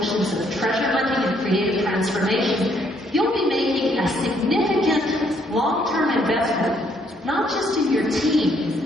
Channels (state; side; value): normal; both; correlation 0.69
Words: of treasure hunting and creative transformation, you'll be making a significant long-term investment, not just in your